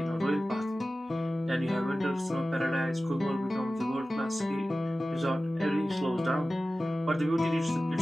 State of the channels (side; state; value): both; normal; correlation 0.96